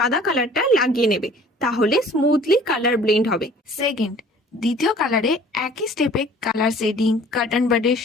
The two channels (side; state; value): both; normal; correlation 0.51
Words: কালারটা লাগিয়ে নেবে, তাহলে স্মুথলি কালার ব্লেন্ড হবে। সেকেন্ড, দ্বিতীয় কালারে একই স্টেপে কালার শেডিং কটন বাডের